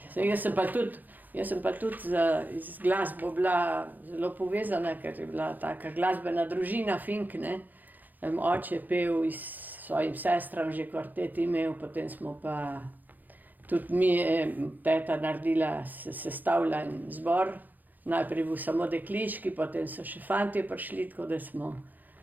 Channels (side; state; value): left; late; 0.084 ms